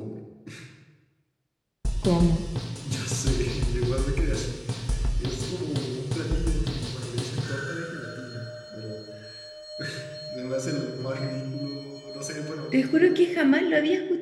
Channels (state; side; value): identical; both; correlation 1.00